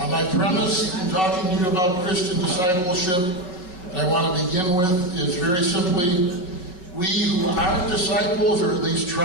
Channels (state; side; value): late; right; 5.4 ms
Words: My premise in talking to you about Christian discipleship, and I want to begin with, is very simply, we who aren't disciples, or at least